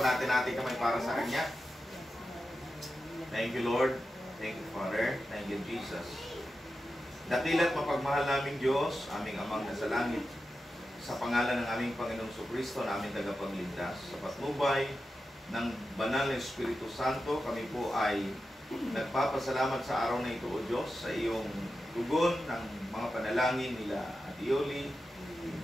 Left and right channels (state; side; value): normal; both; correlation 0.91